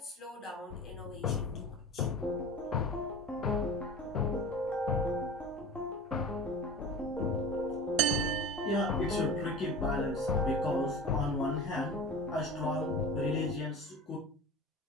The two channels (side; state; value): both; normal; correlation 0.34